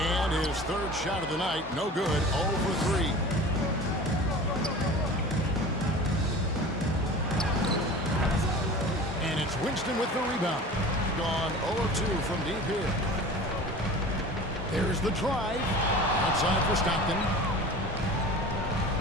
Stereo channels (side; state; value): both; normal; correlation 0.38